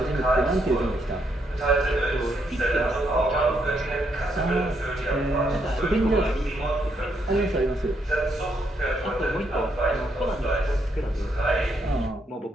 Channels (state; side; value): normal; both; correlation 0.76